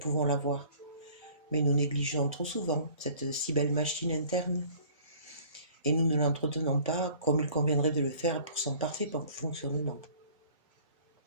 la voir. Mais nous négligeons trop souvent cette si belle machine interne, et nous ne l'entretenons pas comme il conviendrait de le faire pour son parfait fonctionnement.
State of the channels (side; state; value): both; inverted; correlation -0.51